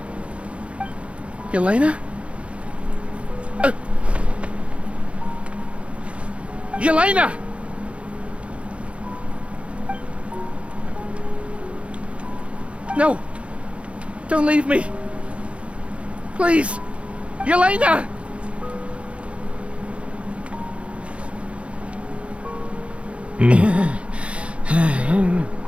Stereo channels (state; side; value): late; left; 0.061 ms